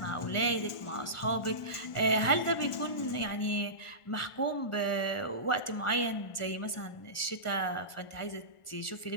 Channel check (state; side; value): late; right; 1.4 ms